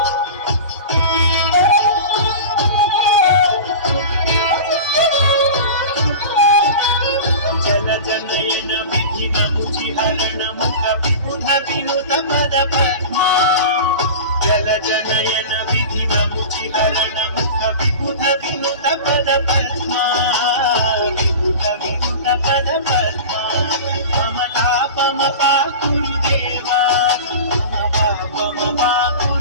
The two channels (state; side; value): inverted; both; correlation -0.32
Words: వినుత పద పద్మా జల జనయన విధి నముచి హరణ ముఖ విబుధ వినుత పద పద్మా విబుధ వినుత పద పద్మా మమ తాపమ పాకురుదేవా మమ పాపమ